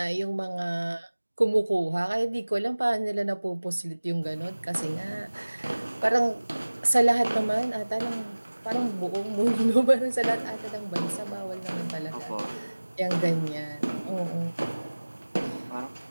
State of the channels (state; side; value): inverted; both; correlation -1.00